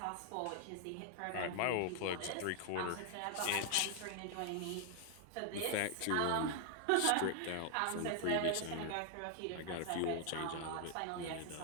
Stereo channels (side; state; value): both; different; correlation 0.00